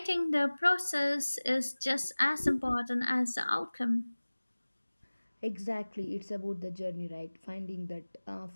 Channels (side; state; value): both; inverted; correlation -1.00